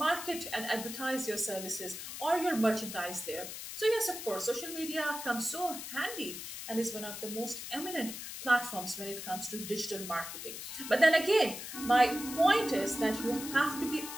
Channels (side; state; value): left; noise; hiss, 8 dB below the sound